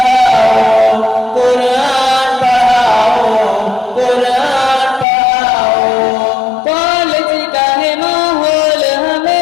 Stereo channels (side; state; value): right; drops out; at 5.1 s